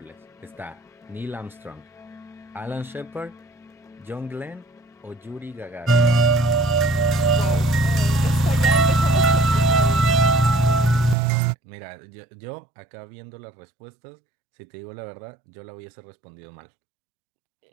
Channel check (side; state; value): left; drops out; at 11.2 s